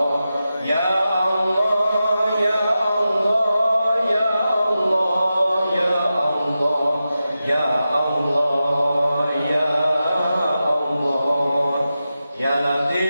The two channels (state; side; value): inverted; both; correlation -0.91